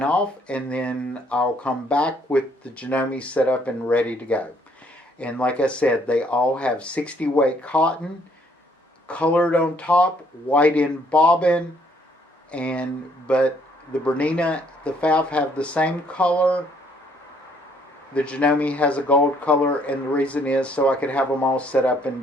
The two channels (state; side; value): normal; both; correlation 0.66